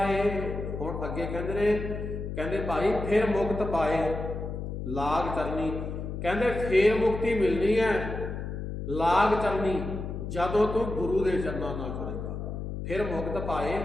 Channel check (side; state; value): left; noise; hum, 6 dB below the sound